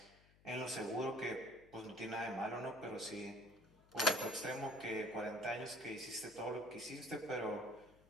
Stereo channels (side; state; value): left; noise; hum, 27 dB below the sound